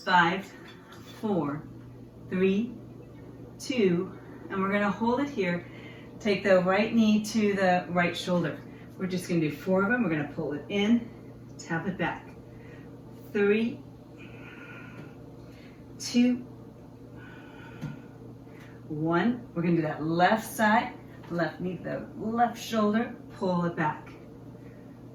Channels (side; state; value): both; identical; correlation 1.00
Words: 5, 4, 3, 2, and we're going to hold it here. Take the right knee to the right shoulder. We're just going to do 4 of them. We're going to pull it in, tap it back. 3, 2, 1. We're going to do that left side, left knee to the left shoulder, pull it back.